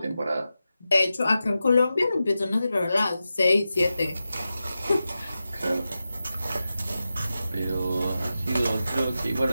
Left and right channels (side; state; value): both; inverted; correlation -0.92